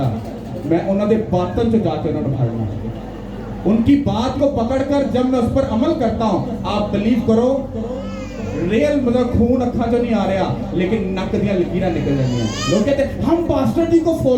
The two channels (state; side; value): identical; both; correlation 1.00